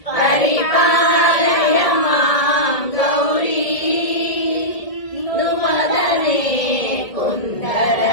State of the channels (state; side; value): late; right; 1.7 ms